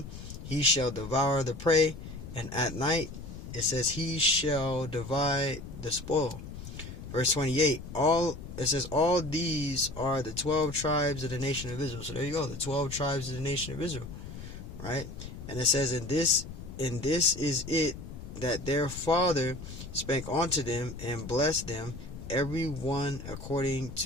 he shall devour the prey, and at night it says he shall divide the spoil. Verse 28, it says, all these are the 12 tribes of the nation of Israel. So there you go, the 12 tribes of the nation of Israel. Right? And it says, And this is it, that their father spake unto them and blessed them, every one according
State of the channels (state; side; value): noise; left; rumble, 11 dB below the sound